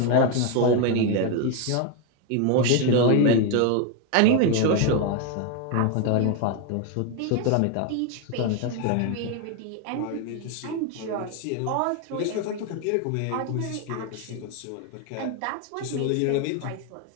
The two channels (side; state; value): both; different; correlation 0.01